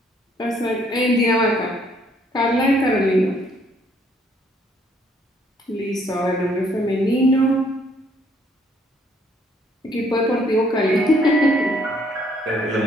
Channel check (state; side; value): normal; both; correlation 0.65